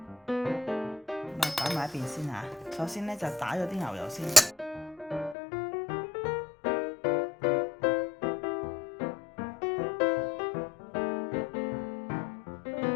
啊擺埋一邊先嚇。首先咧就打咗啲牛油先，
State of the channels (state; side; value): drops out; right; at 5.4 s